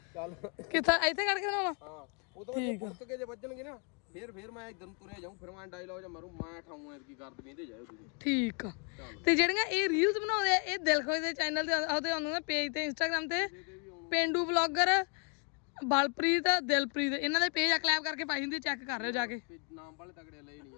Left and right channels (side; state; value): right; quieter; 35.6 dB